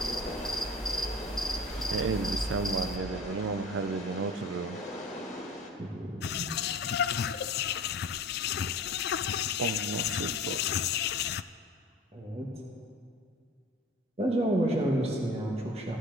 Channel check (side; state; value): both; normal; correlation 0.40